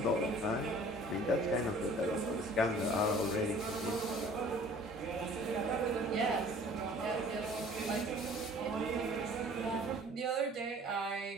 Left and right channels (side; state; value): both; normal; correlation 0.50